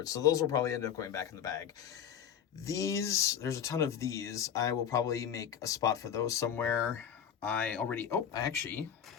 So those will probably end up going back in the bag. These, there's a ton of these. I will probably make a spot for those somewhere. Actually,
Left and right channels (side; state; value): right; quieter; 8.8 dB